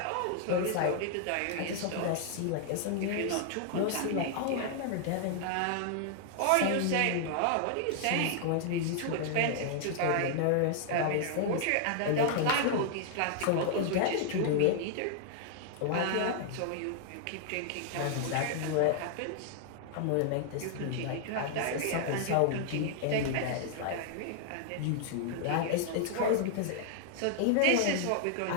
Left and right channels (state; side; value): different; both; correlation 0.00